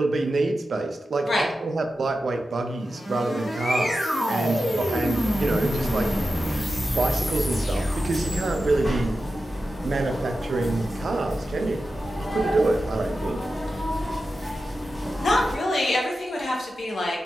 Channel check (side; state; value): both; normal; correlation 0.92